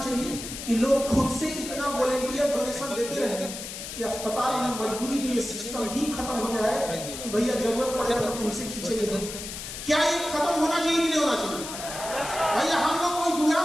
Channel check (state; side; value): noise; left; hiss, 8 dB below the sound